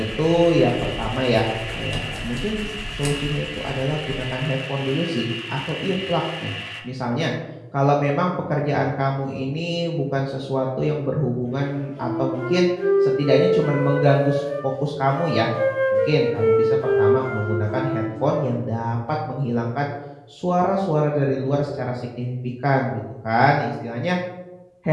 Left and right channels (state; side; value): identical; both; correlation 1.00